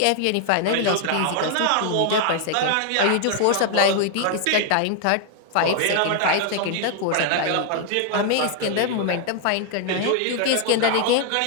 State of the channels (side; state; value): both; different; correlation 0.00